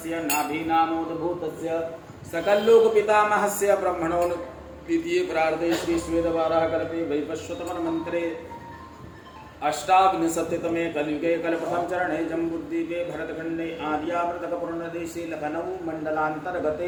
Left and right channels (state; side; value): identical; both; correlation 1.00